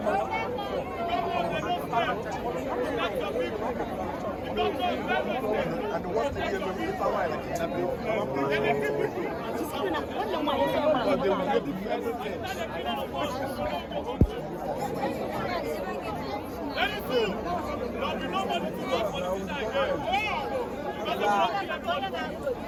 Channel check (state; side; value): identical; both; correlation 1.00